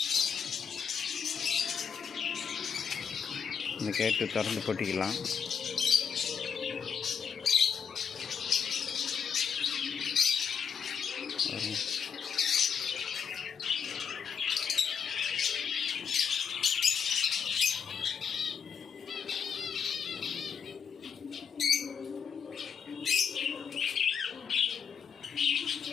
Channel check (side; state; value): right; quieter; 7.0 dB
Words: இந்த கேட்டு திறந்து போட்டிக்கலாம்.